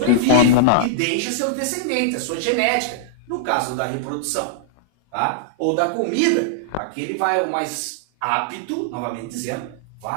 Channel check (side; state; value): both; different; correlation -0.01